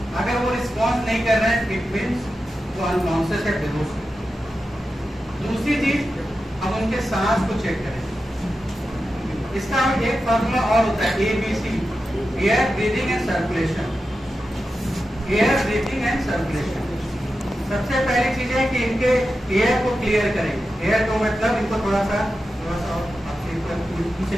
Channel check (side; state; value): both; normal; correlation 0.91